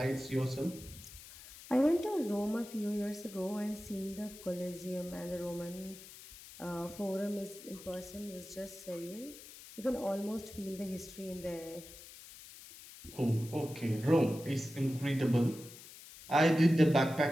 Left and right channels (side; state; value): left; noise; hiss, 17 dB below the sound